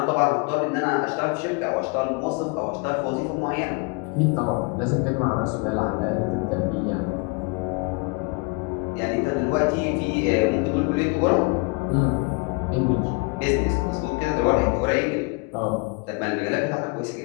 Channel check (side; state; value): right; quieter; 29.9 dB